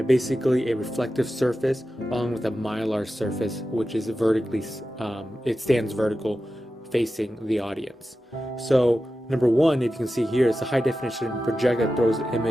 basically a reflective surface along with a mylar surface, which is vertically, it stands vertical facing the audience. So number one, if you can see here, it's a high definition projector that throws the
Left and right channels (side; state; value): both; normal; correlation 0.92